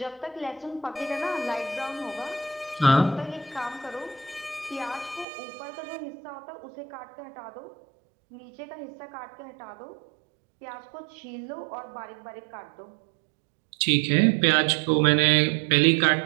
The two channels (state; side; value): drops out; left; at 5.2 s